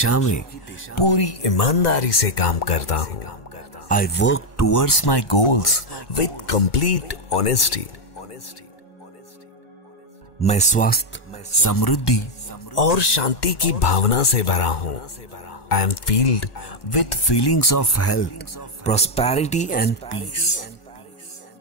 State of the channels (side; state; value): right; late; 1.3 ms